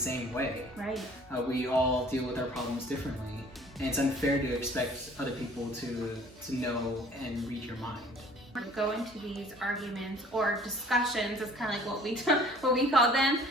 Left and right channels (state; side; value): normal; both; correlation 0.52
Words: way. Right. We all deal with our problems differently, and it's unfair to expect other people to know and read your mind. Go into these arguments or discussions, is kind of like what we call them,